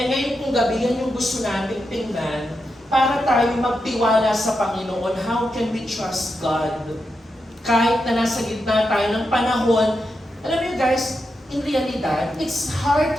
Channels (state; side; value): normal; both; correlation 0.86